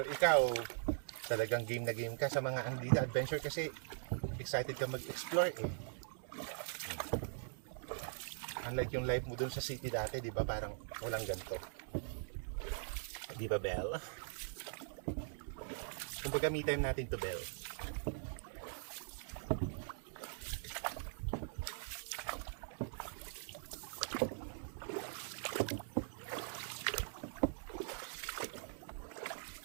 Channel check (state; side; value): silent; left; digital silence